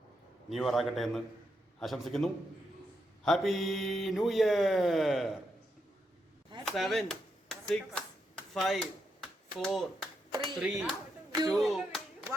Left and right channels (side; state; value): both; normal; correlation 0.82